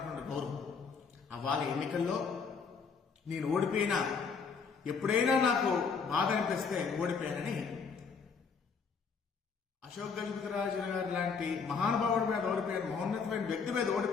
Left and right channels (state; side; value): quieter; right; 5.5 dB